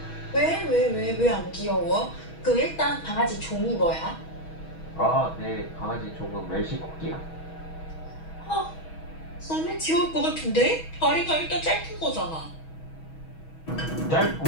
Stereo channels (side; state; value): right; late; 6.2 ms